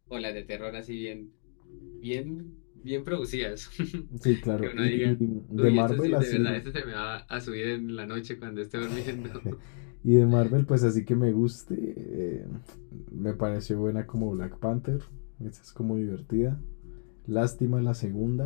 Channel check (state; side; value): silent; right; digital silence